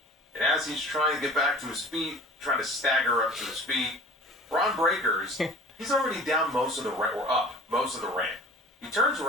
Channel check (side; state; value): both; normal; correlation 0.43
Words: And as he's trying to get back to his feet, trying to stagger up to his feet, Braun Breaker's, he's already down most of the ramp, or up most of the ramp. He turns